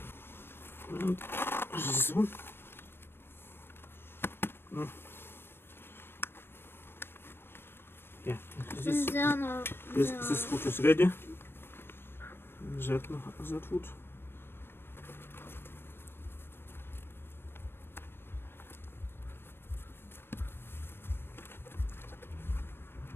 and this one. No. Yeah, this foot is ready. that wood.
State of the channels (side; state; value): right; late; 0.11 ms